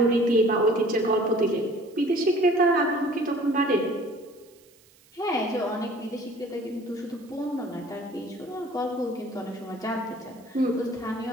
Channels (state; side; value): noise; right; hiss, 29 dB below the sound